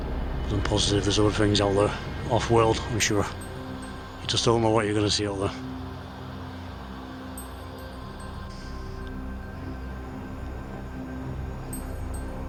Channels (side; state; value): both; identical; correlation 1.00